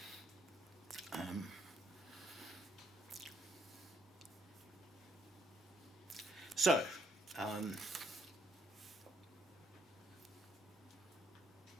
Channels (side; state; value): both; normal; correlation 0.70